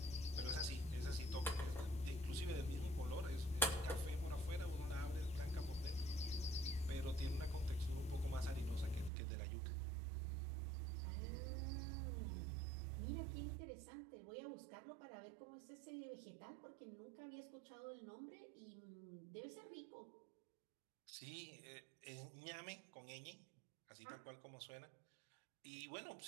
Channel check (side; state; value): left; drops out; at 9.1 s